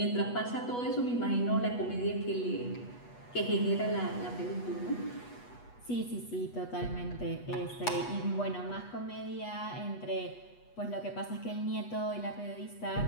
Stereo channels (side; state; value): right; late; 8.2 ms